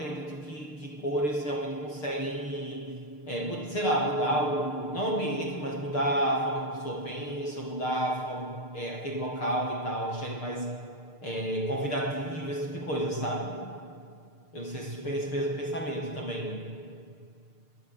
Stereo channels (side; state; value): right; late; 6.6 ms